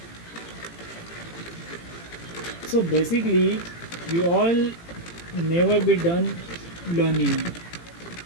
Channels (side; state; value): right; late; 18 ms